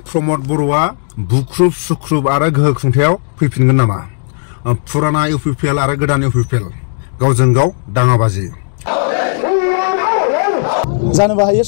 प्रमद बर'आ बुख्रुब सुख्रुब आरो गोहो खुंथायाव फैफिनगोन नामा पुराना इउपिपिएल आरो गोदान इउपिपिएल गावजों गाव दाङाबाजि जानोबो हायो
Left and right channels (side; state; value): right; silent; digital silence